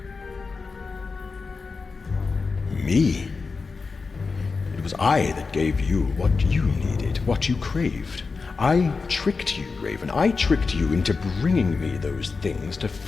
Me? It was I that gave you what you needed, what you craved. I tricked you, Raven. I tricked you into bringing me those things to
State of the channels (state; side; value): quieter; right; 4.5 dB